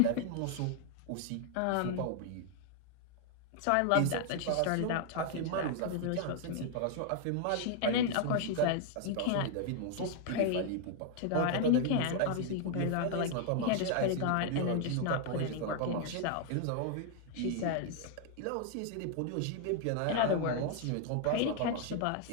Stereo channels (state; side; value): different; both; correlation 0.00